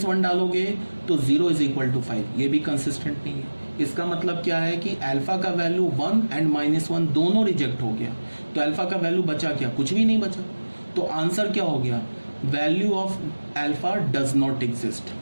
डालोगे तो 0 इज इक्वल टू 5, ये भी कंसिस्टेंट नहीं है। इसका मतलब क्या है कि अल्फा का वैल्यू 1 एंड -1 दोनों रिजेक्ट हो गया, तो अल्फा का वैल्यू बचा क्या, कुछ भी नहीं बचा। तो आंसर क्या हो गया, value of alpha does not exist,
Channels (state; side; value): inverted; both; correlation -1.00